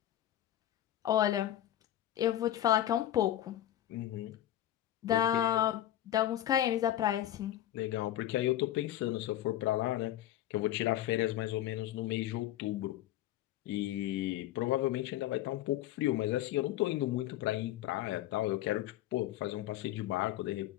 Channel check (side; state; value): right; quieter; 12.9 dB